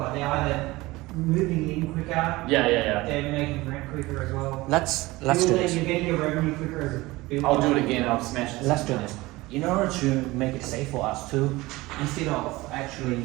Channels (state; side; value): quieter; left; 20.3 dB